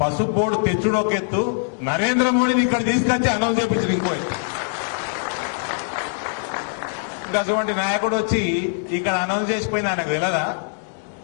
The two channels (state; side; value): silent; right; 60 dB below the other